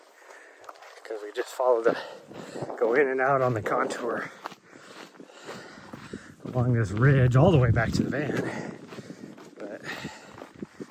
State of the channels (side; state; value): both; identical; correlation 1.00